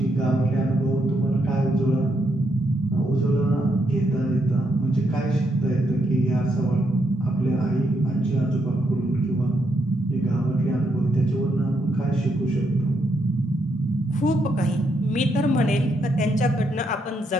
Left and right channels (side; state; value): both; normal; correlation 0.78